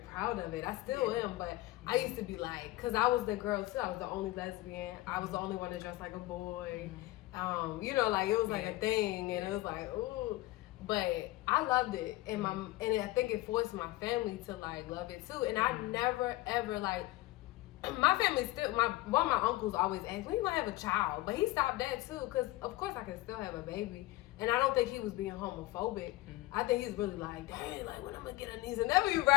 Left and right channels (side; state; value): right; quieter; 18.2 dB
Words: of it. I still am, but I used to be like, because I was the girl too. I was the only lesbian. I was the only one that dressed like a boy. You know, like, it was like a thing, and it was like, ooh. But I loved it, and I think it forced my family to like love it too. And I never ever like, my family still, one of my uncles always asked, when you gonna have a child? But he stopped that too, because of course I can still have a baby. And I don't think he was being homophobic. I think he's really like, dang, like, when I'm gonna get a niece and nephew,